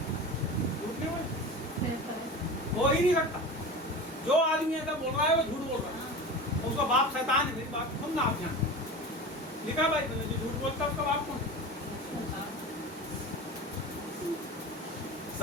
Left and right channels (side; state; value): both; normal; correlation 0.31